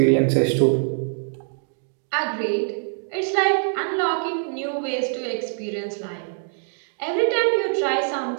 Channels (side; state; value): left; silent; 63 dB below the other